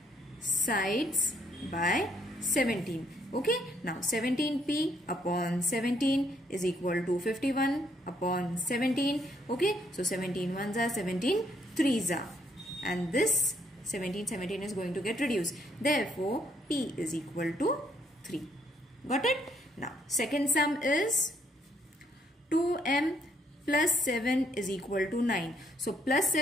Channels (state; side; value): normal; both; correlation 0.70